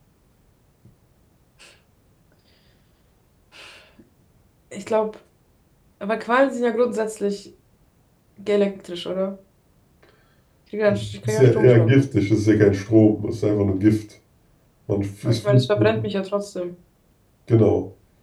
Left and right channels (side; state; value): both; identical; correlation 1.00